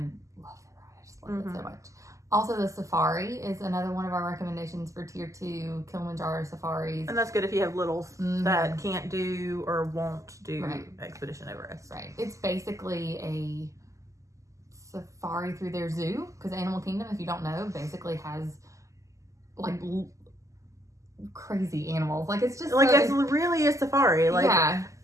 I just love it so much. Also, the safari is another one of our recommendations for tier 2, Kilimanjaro safaris. And that's good if you have littles that can't do or won't do Expedition Everest. Right. It's basically a safari through their zoo because Animal Kingdom, if you don't know, basically has like crazy animals. Like it's just like it's really a safari. Like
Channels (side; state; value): left; late; 0.16 ms